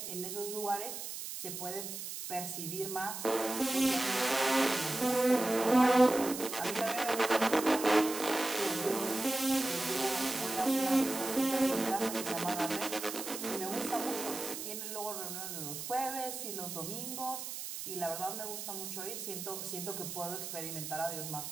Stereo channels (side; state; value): right; noise; hiss, 7 dB below the sound